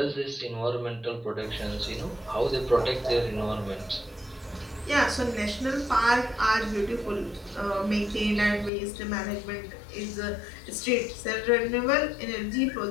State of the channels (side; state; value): right; drops out; at 8.7 s